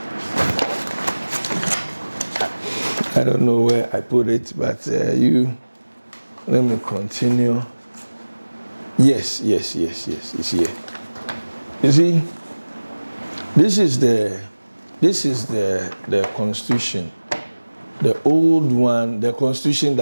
I don't know where I put it, but let me continue. Yes, it's here. You see, this is the Constitution, the old one, the Constitution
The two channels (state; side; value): inverted; both; correlation -1.00